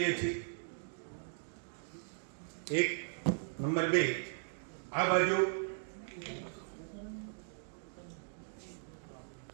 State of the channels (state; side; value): silent; left; digital silence